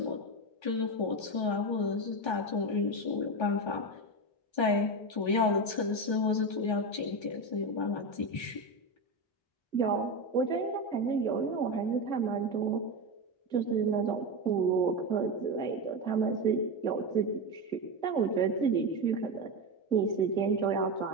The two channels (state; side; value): late; right; 1.3 ms